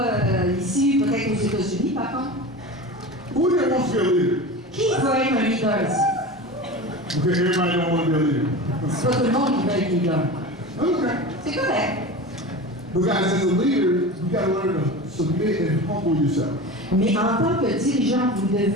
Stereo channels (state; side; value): normal; both; correlation 0.30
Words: ici, peut-être aux États-Unis par contre. Who here wants to be a leader? Qui veut être un leader ici? Okay, everybody don't want to be a leader. C'est pas tout le monde qui veut être leader. Okay. C'est correct. But guys, as a leader, you got to learn to submit and humble yourself. Mais en tant que dirigeant, vous